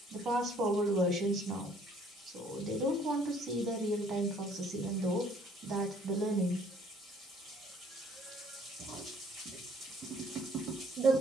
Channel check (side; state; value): both; normal; correlation 0.60